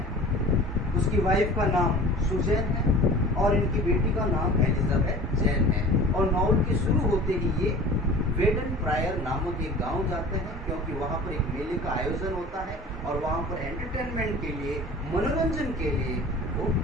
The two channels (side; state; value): both; normal; correlation 0.41